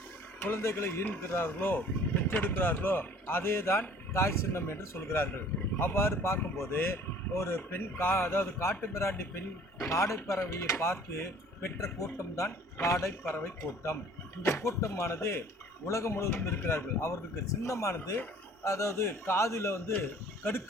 குழந்தைகளை ஈன்கிறார்களோ பெற்றெடுக்கிறார்களோ அதே தான் தாய் சின்னம் என்று சொல்கிறார்கள். அவ்வாறு பார்க்கும்போது ஒரு பெண் அதாவது காட்டு மிராண்டி பெண் காடைப்பறவையை பார்த்து பெற்ற கூட்டம்தான் காடைப்பறவை கூட்டம். இந்த கூட்டமானது உலகம் முழுவதும் இருக்கிறார்கள். அவர்களுக்கு சின்னமானது, அதாவது காதில்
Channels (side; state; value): both; normal; correlation 0.52